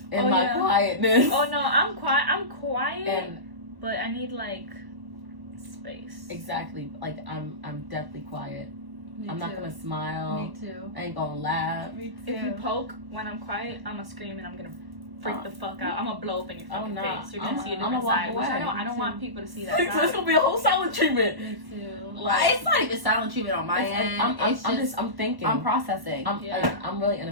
in my quietness. Oh no, I'm quiet, but I need, like, space. Exactly. Like, I'm definitely quiet. I'm not gonna smile. Me too. I ain't gonna laugh. Me too. If you poke when I'm quiet, I'm gonna scream and I'm gonna freak the fuck out. I'm gonna blow up in your fucking face. You're gonna see a different side. Which I don't want people to see that side. It's gonna be a whole silent treatment. Me too. Like, it's not even silent treatment on my end. I'm thinking. I'm processing. I'm really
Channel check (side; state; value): left; late; 1.1 ms